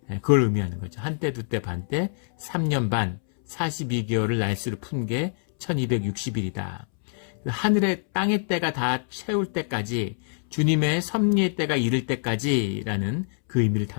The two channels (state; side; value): silent; right; 61 dB below the other